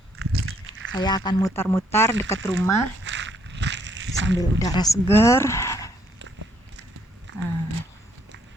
Saya akan mutar-mutar dekat rumah sambil udara segar.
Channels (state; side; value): normal; both; correlation 0.70